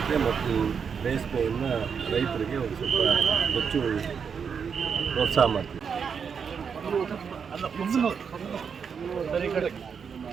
ಮತ್ತು ರೇಷ್ಮೆಯನ್ನು ರೈತರಿಗೆ ಒಂದು ಸ್ವಲ್ಪ ಹೆಚ್ಚು ಪ್ರೋತ್ಸಾಹ ಮಾಡ್ತೀವಿ.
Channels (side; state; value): left; quieter; 6.5 dB